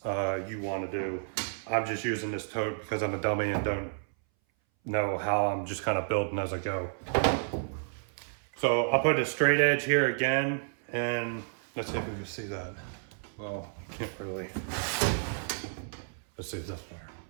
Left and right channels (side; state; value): left; silent; 57 dB below the other